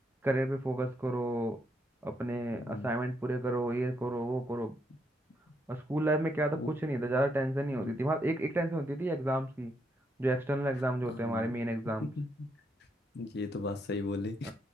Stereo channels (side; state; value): both; normal; correlation 0.77